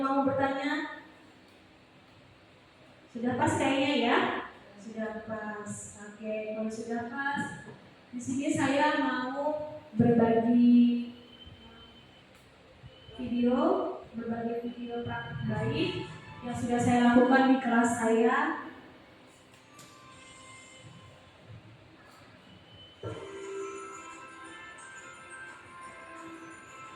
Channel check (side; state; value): both; identical; correlation 1.00